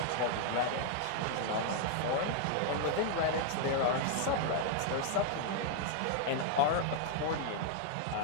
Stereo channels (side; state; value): both; different; correlation 0.00